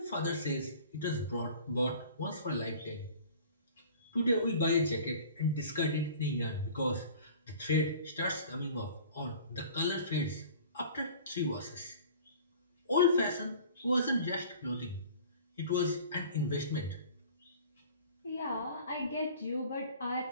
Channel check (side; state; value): both; inverted; correlation -0.45